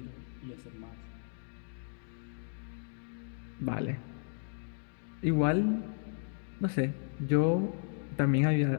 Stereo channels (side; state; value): right; silent; digital silence